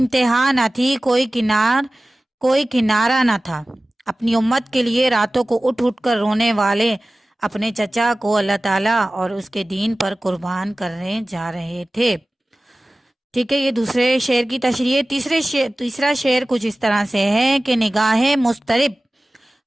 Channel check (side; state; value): both; normal; correlation 0.97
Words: نہ تھی، کوئی کنارہ نہ تھا۔ اپنی امت کے لیے راتوں کو اٹھ اٹھ کر رونے والے اپنے چچا کو اللہ تعالیٰ اور اس کے دین پر قربان کرنے جا رہے تھے۔ ٹھیک ہے، یہ دوسرے شعر کی تشریح ہے۔ تیسرا شعر کچھ اس طرح سے ہے کہ نگاہ مضطرب